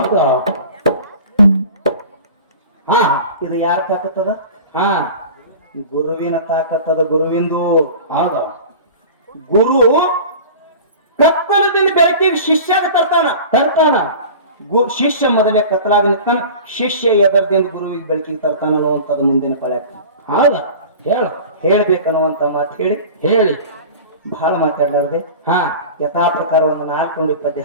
ಹಾ ಇದು ಯಾರ ತಾಕತ್ತದ? ಹಾ ಗುರುವಿನ ತಾಕತ್ತದ. ಗುರುವಿಂದು ಹೌದು ಗುರು ಕತ್ತಲದಿಂದ ಬೆಳಕಿಗೆ ಶಿಷ್ಯಾಗ ತರ್ತಾನ. ತರ್ತಾನ ಶಿಷ್ಯ ಮೊದಲೇ ಕತ್ತಲಾಗ ನಿಂತಾನ, ಶಿಷ್ಯ ಎದರದಿಂದ ಗುರುವಿಗೆ ಬೆಳಕಿಗೆ ತರ್ತಾನ ಅನ್ನುವಂಥದ್ದು ಮುಂದಿನ ಪಳ್ಯಾಕ ಹೌದ ಹೇಳು ಹೇಳ್ಬೇಕನ್ನುವಂತ ಮಾತು ಹೇಳಿ ಹೇಳಿ ಬಹಳ ಮಾತಾಡ್ಲಾರ್ದೆ ಹಾ ಯಥಾ ಪ್ರಕಾರ ಒಂದು 4 ಪದ್ಯ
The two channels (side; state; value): both; inverted; correlation -0.38